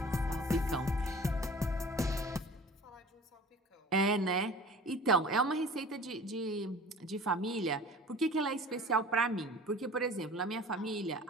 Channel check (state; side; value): normal; both; correlation 0.43